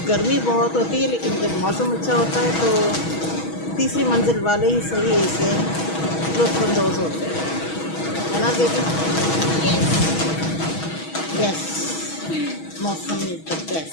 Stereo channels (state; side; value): late; right; 6.2 ms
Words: गर्मी बहुत होती है लेकिन जब मौसम अच्छा होता है तो तीसरी मंजिल वाले ही सही इसे लुत्फ़अंदोज़ होते हैं, है ना दीदी? यस, मौसम इज़ द